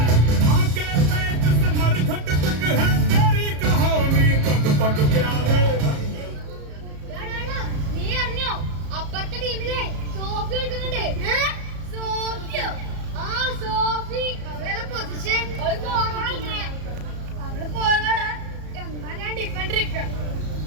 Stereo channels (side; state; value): left; late; 34 ms